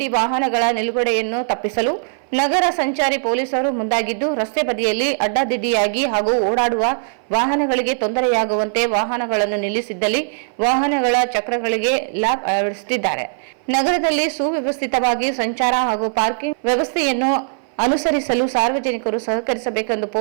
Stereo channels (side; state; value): left; silent; 59 dB below the other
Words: ವಾಹನಗಳ ನಿಲುಗಡೆಯನ್ನು ತಪ್ಪಿಸಲು ನಗರ ಸಂಚಾರಿ ಪೊಲೀಸರು ಮುಂದಾಗಿದ್ದು, ರಸ್ತೆ ಬದಿಯಲ್ಲಿ ಅಡ್ಡಾದಿಡ್ಡಿಯಾಗಿ ಹಾಗೂ ಓಡಾಡುವ ವಾಹನಗಳಿಗೆ ತೊಂದರೆಯಾಗುವಂತೆ ವಾಹನಗಳನ್ನು ನಿಲ್ಲಿಸಿದ್ದಲ್ಲಿ ವಾಹನಗಳ ಚಕ್ರಗಳಿಗೆ ಲಾಕ್ ಅಳವಡಿಸುತ್ತಿದ್ದಾರೆ. ನಗರದಲ್ಲಿ ಸುವ್ಯವಸ್ಥಿತವಾಗಿ ಸಂಚಾರ ಹಾಗೂ ಪಾರ್ಕಿಂಗ್ ವ್ಯವಸ್ಥೆಯನ್ನು ಅನುಸರಿಸಲು ಸಾರ್ವಜನಿಕರು ಸಹಕರಿಸಬೇಕೆಂದು